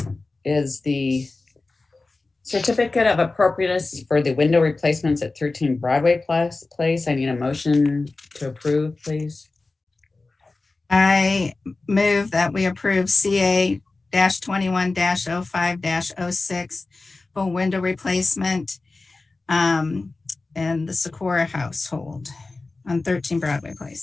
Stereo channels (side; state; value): right; quieter; 3.5 dB